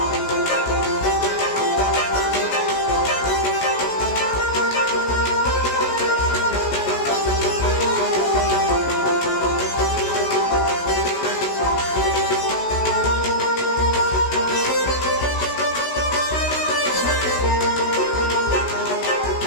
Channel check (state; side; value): late; right; 16 ms